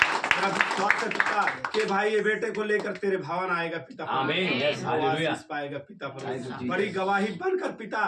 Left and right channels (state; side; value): identical; both; correlation 1.00